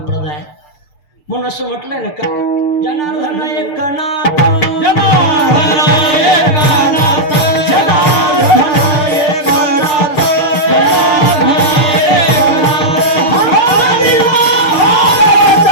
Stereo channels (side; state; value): right; late; 6.7 ms